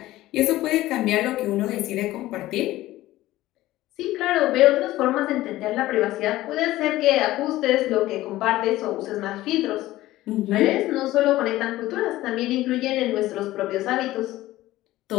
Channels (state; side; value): quieter; right; 16.3 dB